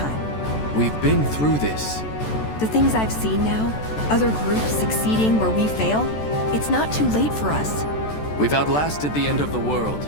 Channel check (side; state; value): right; late; 14 ms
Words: We've been through this. The things I've seen now, other groups succeeding where we fail, it's not too late for us. We've outlasted the end of the world.